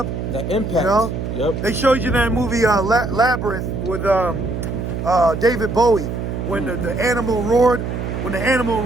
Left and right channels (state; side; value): noise; right; hum, 4 dB below the sound